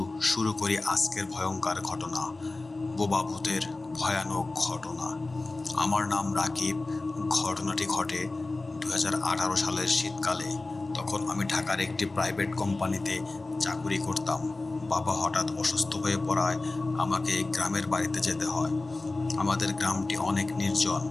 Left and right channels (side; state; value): right; quieter; 3.2 dB